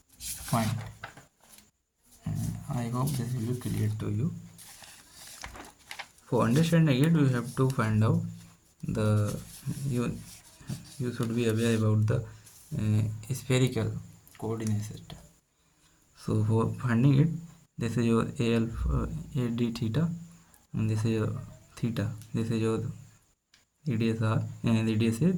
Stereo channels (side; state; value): both; identical; correlation 1.00